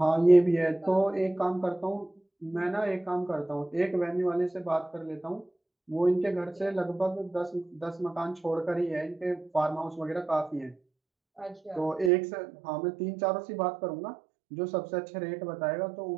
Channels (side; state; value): left; drops out; at 12.1 s